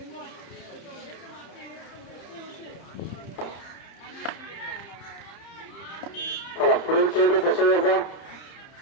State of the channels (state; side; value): late; right; 30 ms